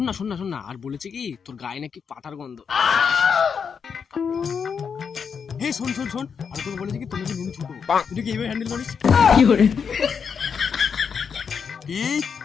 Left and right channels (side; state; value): right; quieter; 6.5 dB